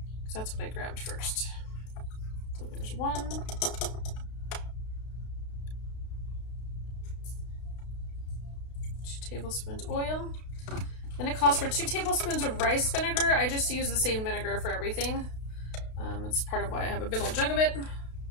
That's what I grabbed first. So there's 1. 2 tablespoons oil. Then it calls for 2 tablespoons of rice vinegar. I just use the same vinegar for everything. That's part of why I have a big old jug of it.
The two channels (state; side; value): late; right; 32 ms